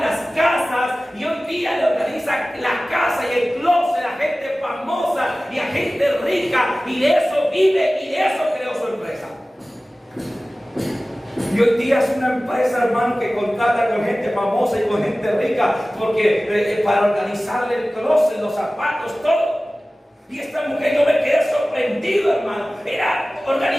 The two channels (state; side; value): normal; both; correlation 0.97